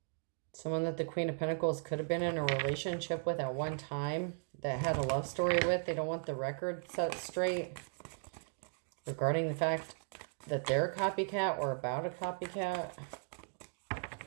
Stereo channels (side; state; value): left; silent; 53 dB below the other